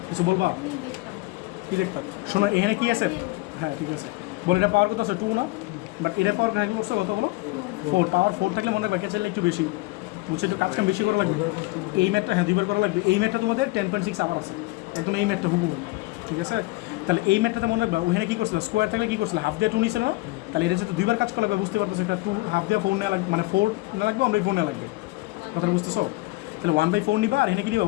কিছু বলবা কি দেখতাম? শোনো এখানে কি আছে, হ্যাঁ ঠিক আছে, বল এটা পাওয়ার কত আছে 2 না, বাট এটা পাওয়ার থাকলে করছে কত হলো 4, পাওয়ার 4 থাকলে মনে রাখবা চাইলে একটু বেশি, বুঝছে, একটু কাজ কাম বেশি করা লাগবে। এই ম্যাথটা হ্যাঁ 2 বার করা লাগবে। এই ম্যাথটা তোমাদের 10.6 আবার আছে একদম, এই ম্যাথটা হুবহু, ঠিক আছে। তাহলে এই ম্যাথটাতে মনে রাখবা ওখানে কী করছিল, স্কোয়ার থাকলে কী করছিল, হাফ দিয়ে 2 নিছিল না, তাহলে এটা যেহেতু 2 বার কাজ করা লাগবে, বুঝতে পারতেছো এটা 2 হাফ দিয়ে 4 নেওয়া লাগবে, মানে 4 না লাগবে, 1/4 নেওয়া লাগবে, কথাটা বুঝতেছো? তাহলে 1/4 নিবা, আর এখানে কী নিবা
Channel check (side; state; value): right; quieter; 21.6 dB